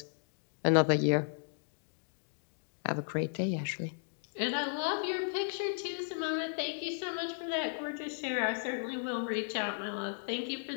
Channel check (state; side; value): silent; right; digital silence